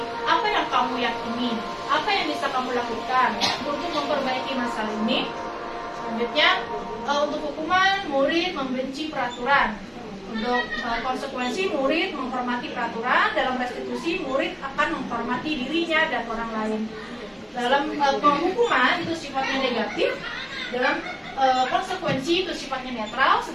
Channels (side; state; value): both; identical; correlation 1.00